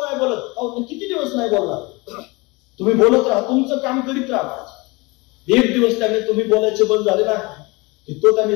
नाही बोलत, अहो किती दिवस नाही बोलणार, तुम्ही बोलत राहा, तुमचं काम करीत राहा. एक दिवस त्याने तुम्ही बोलायचे बंद झाले ना, की तो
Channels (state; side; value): quieter; right; 25.5 dB